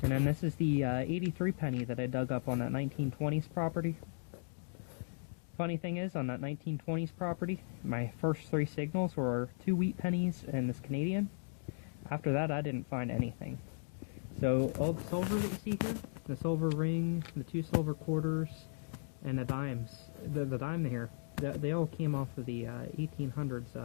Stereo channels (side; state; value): right; silent; digital silence